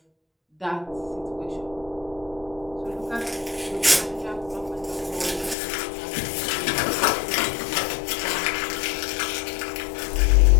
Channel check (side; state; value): right; drops out; at 5.6 s